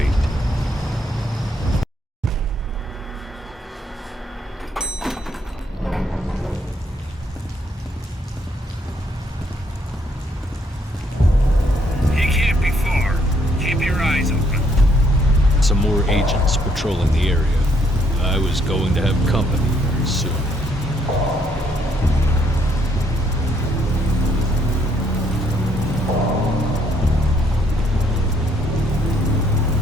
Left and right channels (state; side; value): normal; both; correlation 0.70